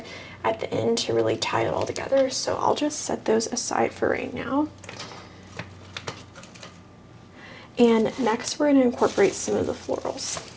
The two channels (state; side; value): identical; both; correlation 1.00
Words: at the end to really tie it all together. So I'll just set those aside for right now. And next we're going to incorporate some of the florals.